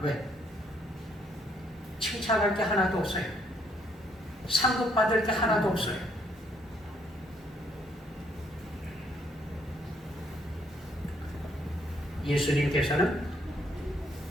왜? 칭찬할 게 하나도 없어요. 상급받을 게 하나도 없어요. 예수님께서는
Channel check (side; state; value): both; normal; correlation 0.69